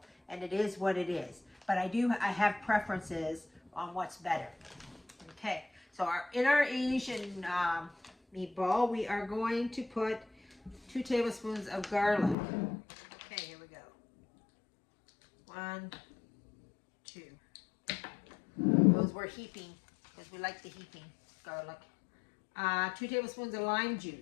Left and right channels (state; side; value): drops out; right; at 12.4 s